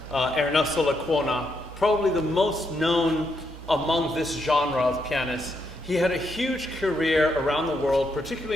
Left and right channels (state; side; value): normal; both; correlation 0.79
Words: Ernesto Lecuona, probably the most known among this genre of pianists. He had a huge career around the world,